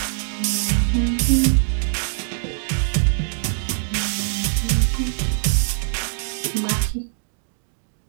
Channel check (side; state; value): left; silent; digital silence